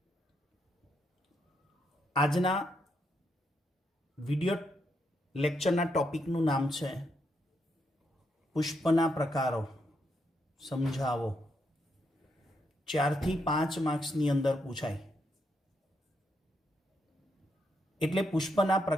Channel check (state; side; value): normal; both; correlation 0.79